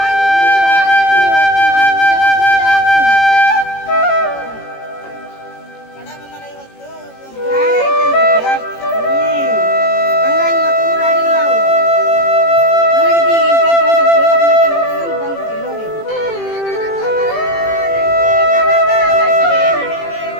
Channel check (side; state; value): right; late; 18 ms